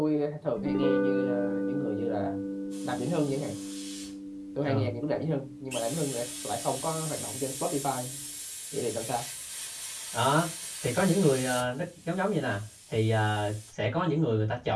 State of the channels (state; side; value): identical; both; correlation 1.00